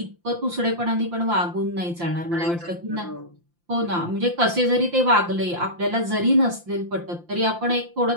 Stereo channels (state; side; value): late; left; 5.8 ms